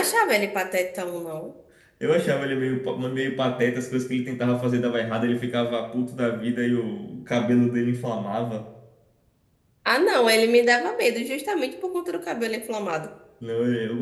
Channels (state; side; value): identical; both; correlation 1.00